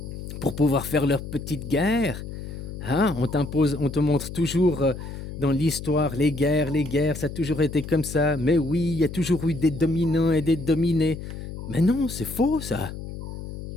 Pour pouvoir faire leur petite guerre. Hein? On t'impose, on te montre toujours dans l'histoire les guerres, ça a toujours été comme ça. Mais oui, il y a toujours eu des dominants et des dominés. Mais non, c'est faux, ça.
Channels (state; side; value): noise; left; hum, 9 dB below the sound